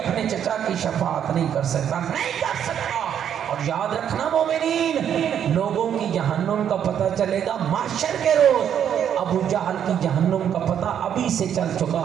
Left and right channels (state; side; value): quieter; left; 9.1 dB